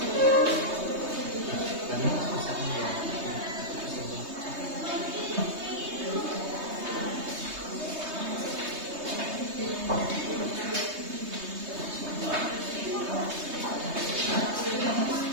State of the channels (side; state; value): left; late; 3.2 ms